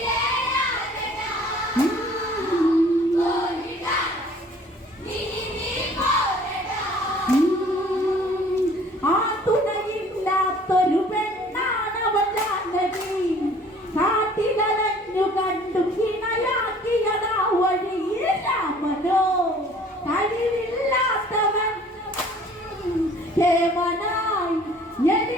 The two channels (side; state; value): both; normal; correlation 0.53